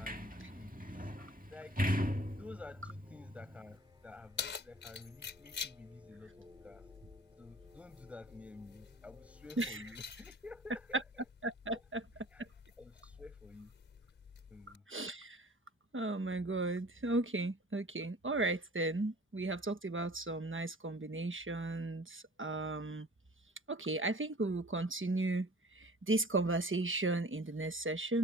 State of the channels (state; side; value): normal; both; correlation 0.46